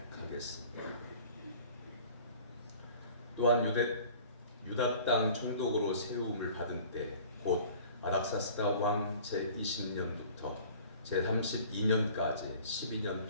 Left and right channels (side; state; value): both; inverted; correlation -0.47